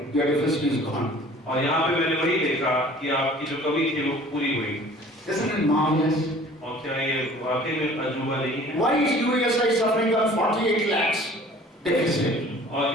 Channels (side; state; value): both; normal; correlation 0.49